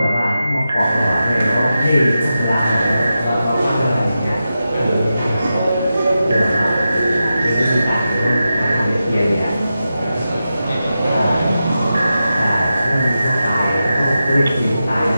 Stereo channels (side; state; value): both; inverted; correlation -0.91